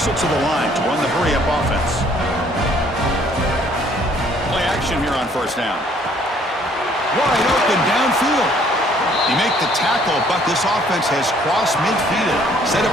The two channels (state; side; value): normal; both; correlation 0.61